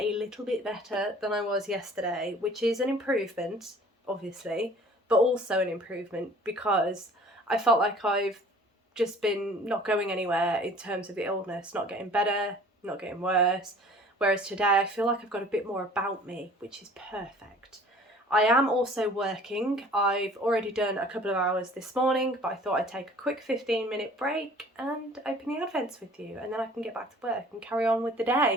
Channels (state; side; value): normal; both; correlation 0.49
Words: little bit better than I was yesterday, which is an improvement, obviously, but also an improvement because I felt like I've just been not going anywhere in terms of the illness, not getting better, not getting worse. Whereas today I feel like I've got a bit more about me, which is perfect. I am also working. I've already done a couple of hours this morning, but I thought I'd take a quick 15-minute break and open the Advents with you, and then I can get back to work and carry on with the